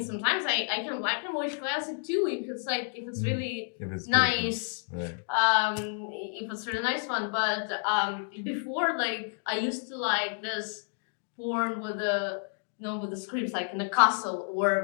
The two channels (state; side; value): silent; right; 58 dB below the other